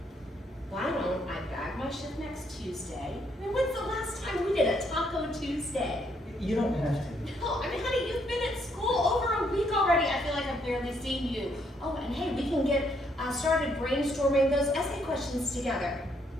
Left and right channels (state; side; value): normal; both; correlation 0.72